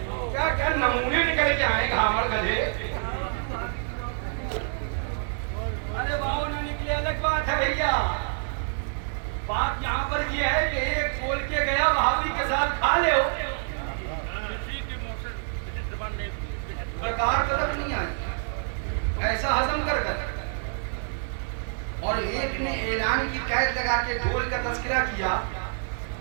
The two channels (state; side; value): silent; left; 60 dB below the other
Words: کیا کیا نمونے نکل کے آئے گھامڑ گدھے. ارے باؤ نہ نکلے الگ بات ہے بھیا, بات یہاں پر یہ ہے کہ ایک بول کے گیا وہابی کے ساتھ کھا لے ہو, برکار طرف نہیں آئی, ایسا ہضم کر کر اور ایک نے اعلان کی قید لگا کے ڈھول کا تذکرہ کیا،